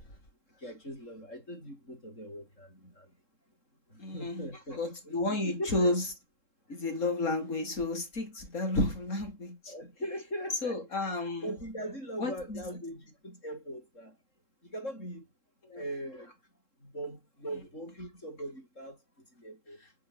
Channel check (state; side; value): late; right; 3.7 ms